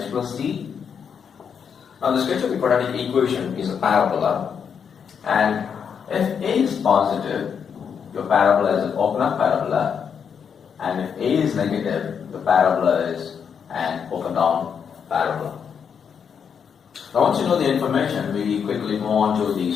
plus c. Now the sketch of the quadratic equation is a parabola, and if a is positive, your parabola is an open up parabola, and if a is negative, the parabola is an open down parabola. Now once you know the information, we quickly move on to the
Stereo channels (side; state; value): right; quieter; 7.1 dB